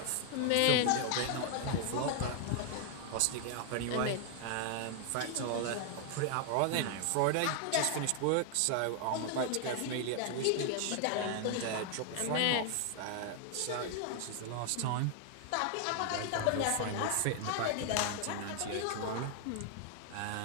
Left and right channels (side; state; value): both; different; correlation 0.00